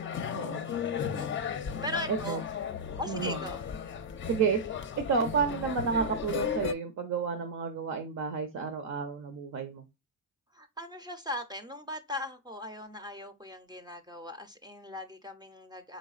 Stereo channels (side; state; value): both; normal; correlation -0.10